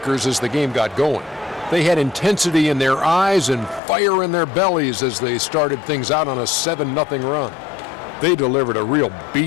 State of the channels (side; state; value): right; drops out; at 3.8 s